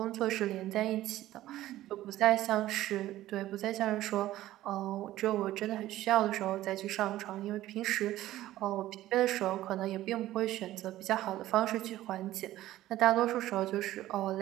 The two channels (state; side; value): quieter; left; 14.8 dB